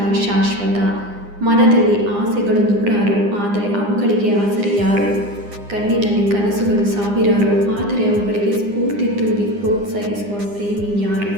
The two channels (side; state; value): left; late; 9.8 ms